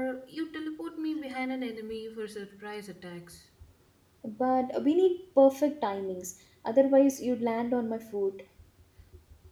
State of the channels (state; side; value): identical; both; correlation 1.00